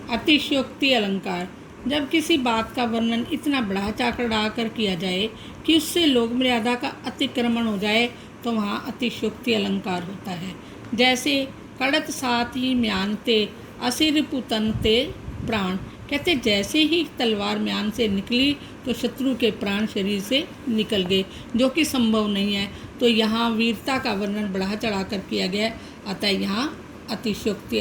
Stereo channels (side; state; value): both; identical; correlation 1.00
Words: अतिशयोक्ति अलंकार, जब किसी बात का वर्णन इतना बढ़ा चढ़ा कर किया जाए कि उससे लोक मर्यादा का अतिक्रमण हो जाए, तो वहाँ अतिशयोक्ति अलंकार होता है। जैसे कड़त साथ ही म्यानते असिर पुतनते प्राण, कहते जैसे ही तलवार म्यान से निकली तो शत्रु के प्राण शरीर से निकल गए, जो कि संभव नहीं है। तो यहाँ वीरता का वर्णन बढ़ा चढ़ा कर किया गया, अतः यहाँ अतिशयोक्ति